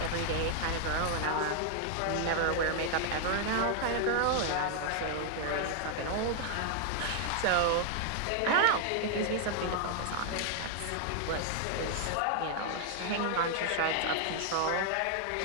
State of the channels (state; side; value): different; both; correlation 0.00